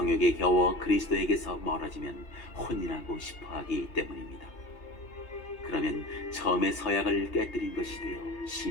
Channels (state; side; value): late; right; 2.8 ms